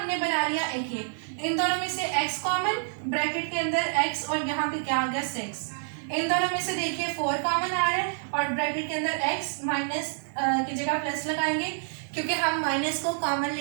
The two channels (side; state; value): left; silent; digital silence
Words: बना लिया, एक ये, इन दोनों में से x कॉमन, ब्रैकेट के अंदर x और यहाँ पे क्या आ गया 6। इन दोनों में से देखिए 4 कॉमन आ रहा है और ब्रैकेट के अंदर x, माइनस की जगह प्लस लगाएंगे क्योंकि हम माइनस को कॉमन